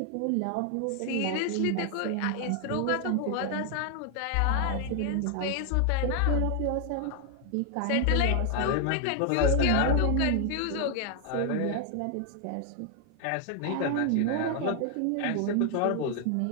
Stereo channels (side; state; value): both; different; correlation 0.00